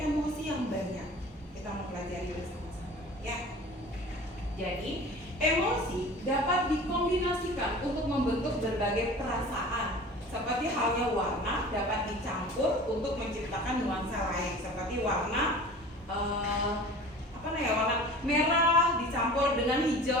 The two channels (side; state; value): both; normal; correlation 0.41